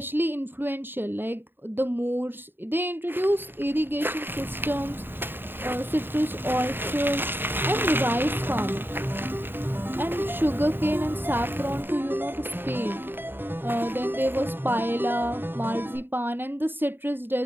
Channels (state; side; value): late; left; 0.097 ms